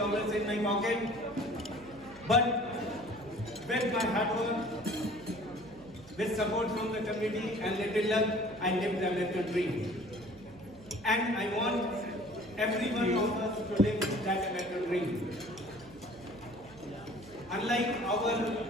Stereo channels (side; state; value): right; noise; hum, 21 dB below the sound